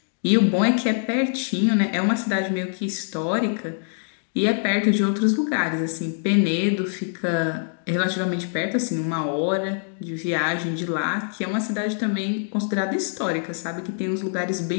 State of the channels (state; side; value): silent; right; digital silence